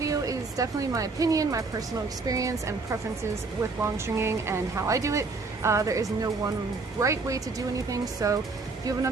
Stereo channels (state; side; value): quieter; left; 4.0 dB